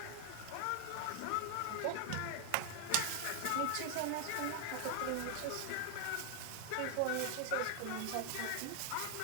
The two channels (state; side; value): different; both; correlation 0.00